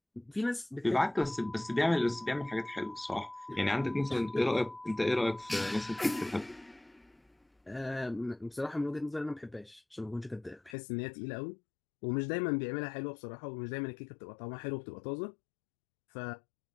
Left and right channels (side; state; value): right; drops out; at 10.8 s